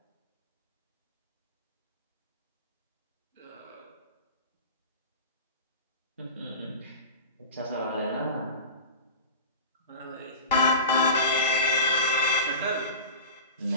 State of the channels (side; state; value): both; inverted; correlation -0.31